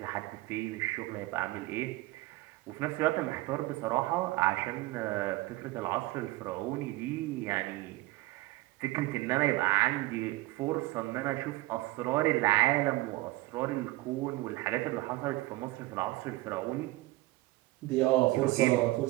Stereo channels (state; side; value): quieter; left; 19.8 dB